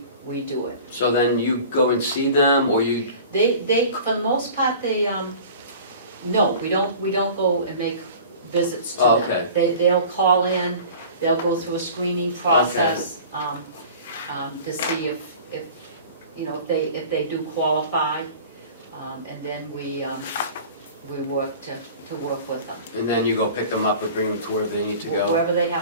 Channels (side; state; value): both; inverted; correlation -0.42